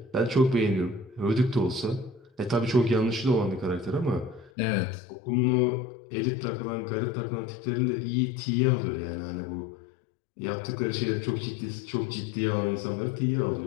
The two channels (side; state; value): right; drops out; at 4.5 s